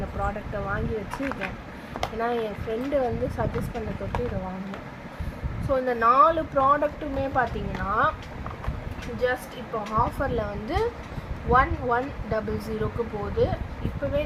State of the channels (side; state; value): both; identical; correlation 1.00